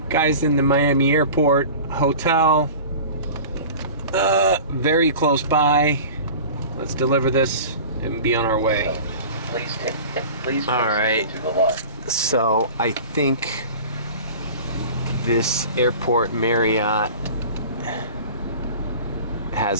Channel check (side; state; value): both; inverted; correlation -0.38